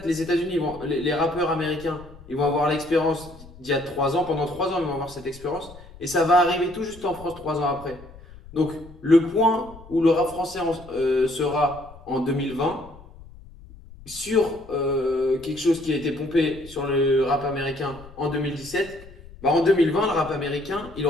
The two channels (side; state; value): left; noise; rumble, 20 dB below the sound